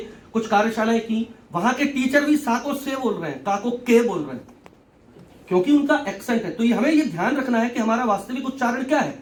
कुछ कार्यशालाएं की, वहां के टीचर भी सा को से बोल रहे हैं, का को के बोल रहे हैं, क्योंकि उनका एक्सेंट है। तो ये हमें ये ध्यान रखना है कि हमारा वास्तविक उच्चारण क्या है।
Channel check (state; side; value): identical; both; correlation 1.00